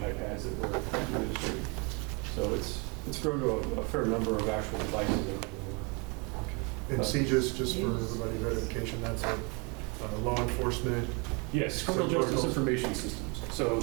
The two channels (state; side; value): quieter; left; 31.3 dB